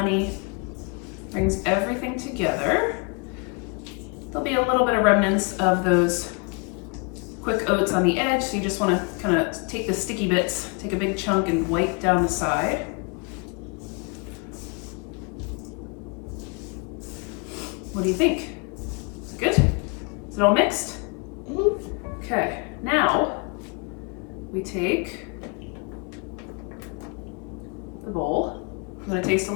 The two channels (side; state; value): right; quieter; 33.9 dB